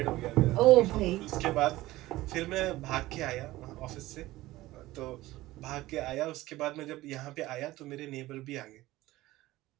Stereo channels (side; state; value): left; quieter; 17.4 dB